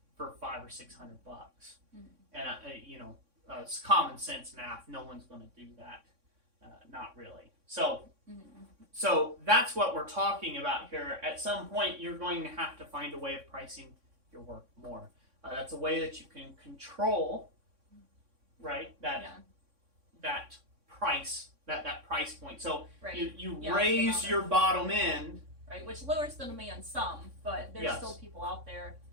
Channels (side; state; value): left; late; 3.6 ms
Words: for $500 or $600 bucks. And it's common sense math. No one's going to do that. Not really. So that's what we're talking about here. At some point, you're going to have to find a way of pricing your work more. That's a way that you can control, right? That price, that price point. So you raise your bottom end, right? Which lowers the demand some, but there's still people out there.